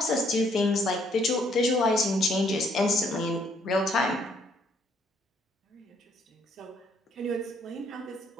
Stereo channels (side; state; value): both; normal; correlation 0.67